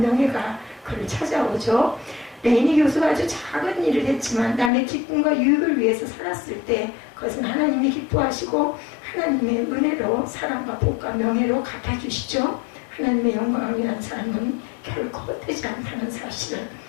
그를 찾아오죠. 레이니 교수가 아주 작은 일을 했지만 남의 기쁨과 유익을 위해서 살았을 때 그것은 하나님이 기뻐하시고 하나님의 은혜로 사랑과 복과 명예로 갚아주시죠. 하나님의 영광을 위한 삶은 결코 헛되지 않다는 사실을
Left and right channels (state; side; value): drops out; right; at 4.7 s